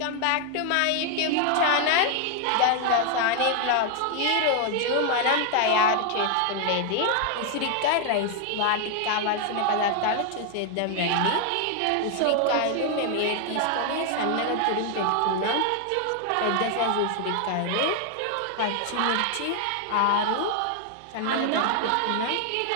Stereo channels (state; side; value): different; both; correlation 0.00